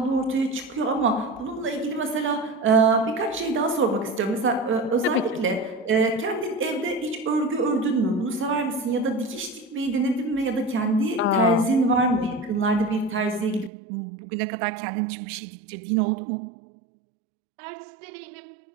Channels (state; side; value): drops out; left; at 13.7 s